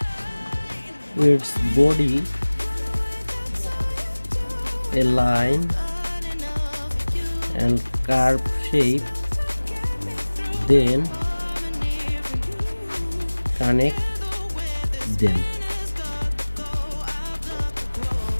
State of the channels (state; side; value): inverted; both; correlation -1.00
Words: its body, a line and curve shape, then connect them.